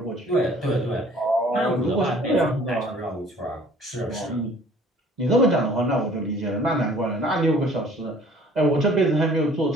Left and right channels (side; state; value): both; normal; correlation 0.53